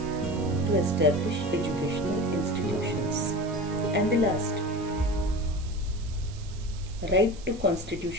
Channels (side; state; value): right; noise; hiss, 20 dB below the sound